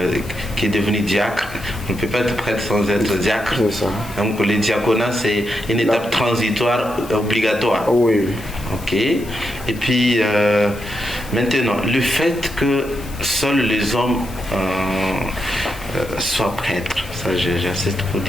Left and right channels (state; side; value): noise; left; hiss, 19 dB below the sound